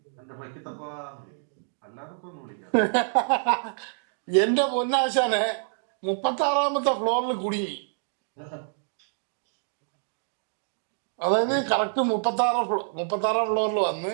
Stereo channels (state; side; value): silent; left; digital silence